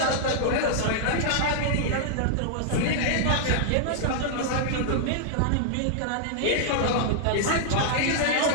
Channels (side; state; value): both; different; correlation -0.01